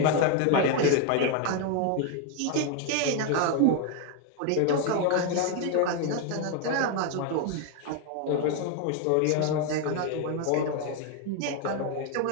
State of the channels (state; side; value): different; both; correlation 0.01